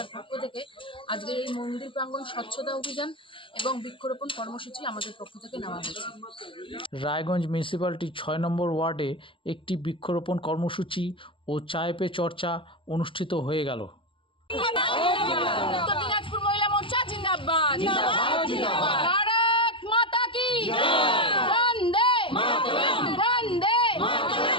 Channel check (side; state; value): right; late; 0.25 ms